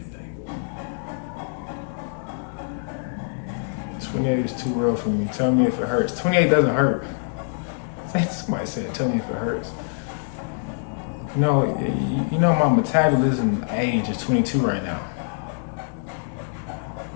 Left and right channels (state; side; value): silent; right; digital silence